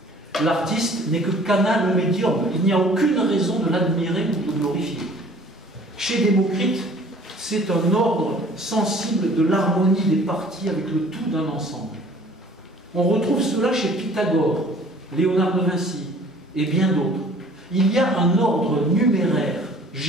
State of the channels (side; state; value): both; normal; correlation 0.52